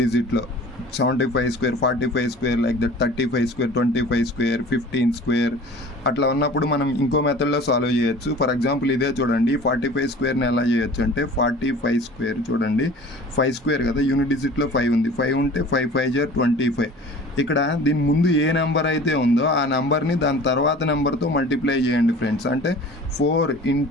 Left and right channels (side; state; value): both; normal; correlation 0.43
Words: డిజిట్లో 75 square, 45 square, like that 35 square, 25 square, 15 square అట్లా ఉన్నప్పుడు మనం ఇంకో మెథడ్లో సాల్వ్ చేయొచ్చు. ఫర్ ఎగ్జాంపుల్ ఇదే చూడండి, 45 స్క్వేర్ని ఎలా చేయొచ్చు అంటే 45 స్క్వేర్ చూడండి. 5 స్క్వేర్ కదా, యూనిట్ డిజిట్లో 5 ఉంది. 5 ఉంటే 5 5s are 25. ఇక్కడ దీని ముందు ఏ నెంబర్ అయితే ఉందో ఆ నెంబర్ని దాని తర్వాత నెంబర్తో మల్టిప్లై చేయండి ఫ్రెండ్స్. అంటే 4